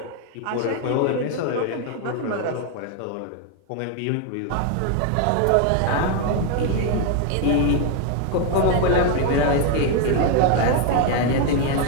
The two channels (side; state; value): both; different; correlation 0.01